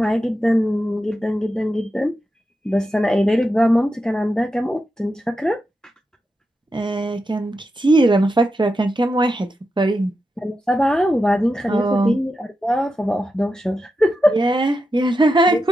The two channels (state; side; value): normal; both; correlation 0.88